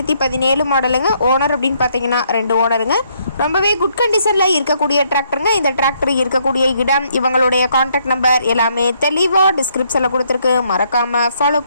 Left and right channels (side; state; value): both; inverted; correlation -0.71